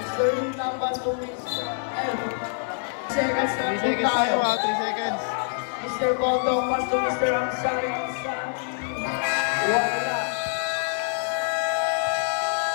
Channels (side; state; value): right; silent; digital silence